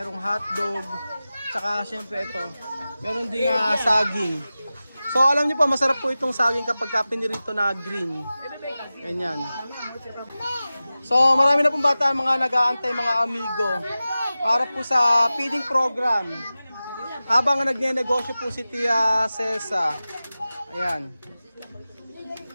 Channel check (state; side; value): inverted; both; correlation -0.96